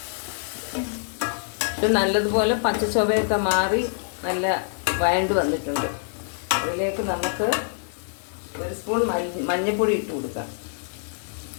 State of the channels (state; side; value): silent; right; digital silence